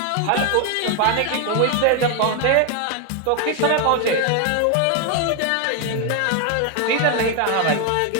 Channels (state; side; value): different; both; correlation 0.01